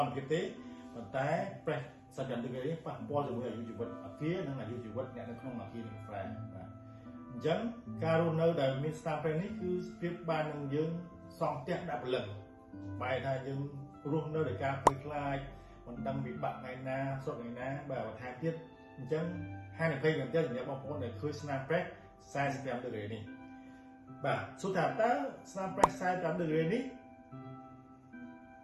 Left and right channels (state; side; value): identical; both; correlation 1.00